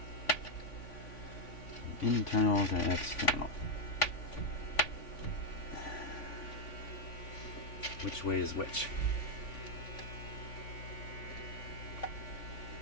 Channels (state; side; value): late; right; 3.5 ms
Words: internal to external. Which way is which?